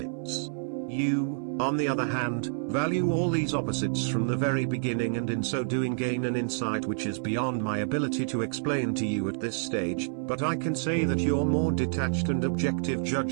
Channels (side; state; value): left; silent; 56 dB below the other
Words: You, on the other hand, value all these opposites from the very beginning, and in so doing gain an insight which is beyond my ability to explain to you at this stage, but I can say that your more detached and objective